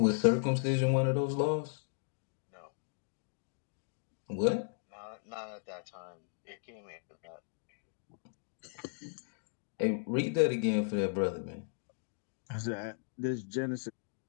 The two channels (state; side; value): silent; right; digital silence